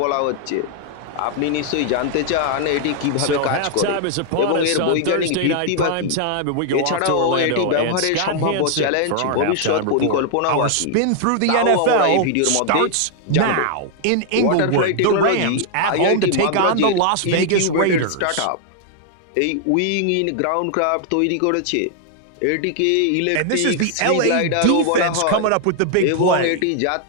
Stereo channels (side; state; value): both; different; correlation 0.00